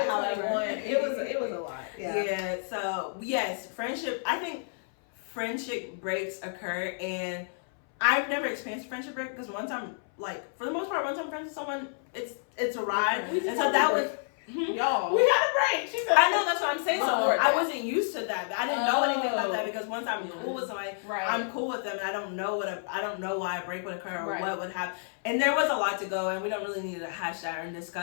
21. It was a lot. Yeah. So yes, friendship. I think friendship breaks occur, and I've never experienced a friendship break because once I'm like, for the most part, once I'm friends with someone, it's a ride. And so that was. Y'all. We had a break. She said, I know, that's what I'm saying. So Support I that. wasn't used to that. I didn't know anything about that because once I'm cool with somebody, Right. I'm cool with them, and I don't know I don't know why a break would occur or Right. what would happen. And there was a lot to go, and we don't really need to hash that and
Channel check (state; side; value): silent; right; 58 dB below the other